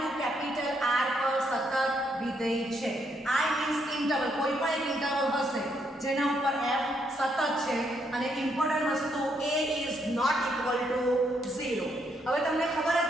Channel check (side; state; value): both; normal; correlation 0.75